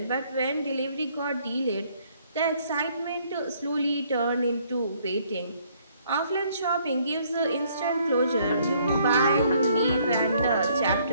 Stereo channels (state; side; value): inverted; both; correlation -0.65